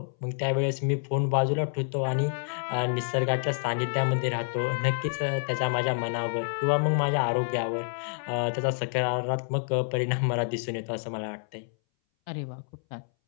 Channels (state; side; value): silent; right; 59 dB below the other